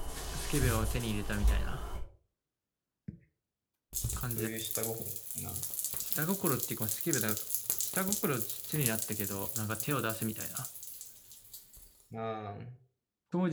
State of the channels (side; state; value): both; identical; correlation 1.00